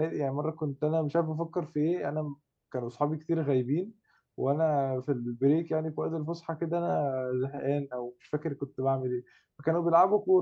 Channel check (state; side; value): identical; both; correlation 1.00